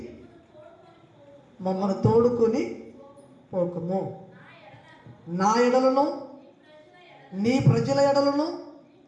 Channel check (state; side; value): identical; both; correlation 1.00